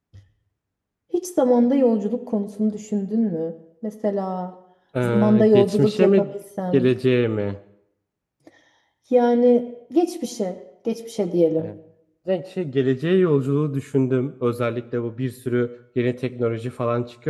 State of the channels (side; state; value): both; identical; correlation 1.00